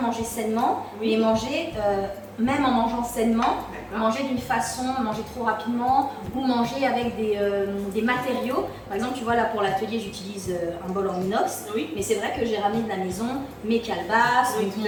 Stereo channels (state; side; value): identical; both; correlation 1.00